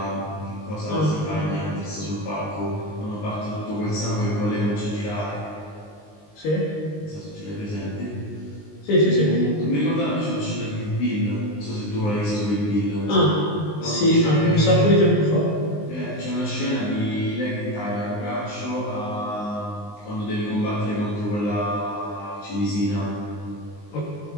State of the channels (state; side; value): late; right; 19 ms